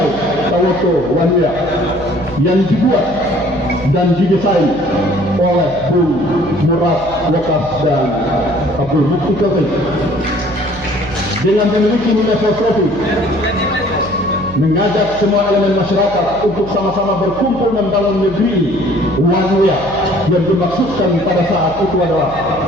Tawoto Wanira yang dibuat dan didesain oleh Bung Murad Wakas dan Abdul Mukti Kevin dengan memiliki nilai filosofi mengajak semua elemen masyarakat untuk sama-sama berkumpul membangun negeri ini. Wanita yang dimaksudkan pada saat itu adalah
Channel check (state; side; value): noise; right; hum, 16 dB below the sound